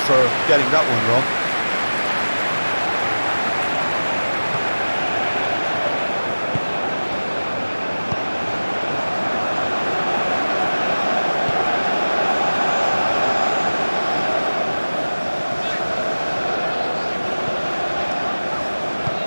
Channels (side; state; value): both; inverted; correlation -1.00